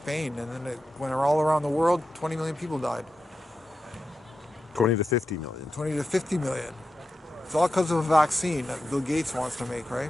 and then it went all around the world. 20 million people died. 20 to 50 million. 20 to 50 million. It's all because of a vaccine that Bill Gates wants to make,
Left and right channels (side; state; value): both; normal; correlation 0.90